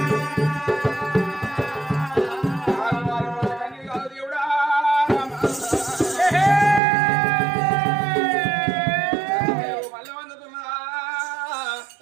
దేవుడా మళ్ళీ వందుతున్నా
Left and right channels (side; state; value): left; drops out; at 6.8 s